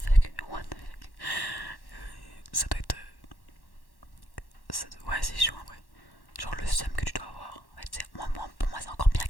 Ça doit être. Ouais, c'est chaud en vrai. Genre, le seum que tu dois avoir. En fait, pour moi, c'est encore bien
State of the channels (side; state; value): right; late; 1.1 ms